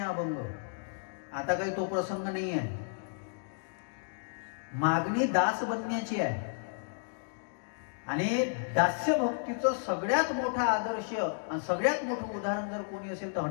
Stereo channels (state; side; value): silent; right; digital silence